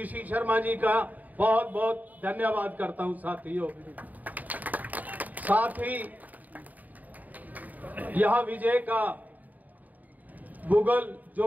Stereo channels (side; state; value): left; late; 0.079 ms